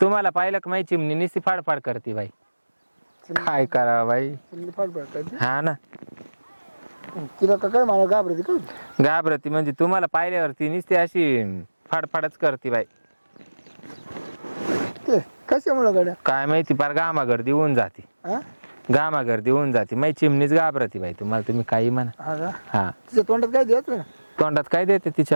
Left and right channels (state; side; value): inverted; both; correlation -1.00